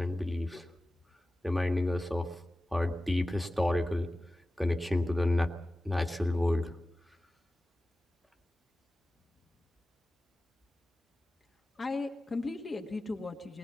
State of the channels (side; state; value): both; normal; correlation 0.95